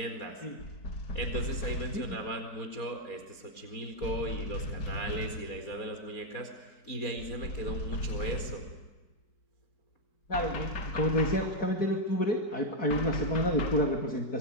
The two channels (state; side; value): late; right; 4.5 ms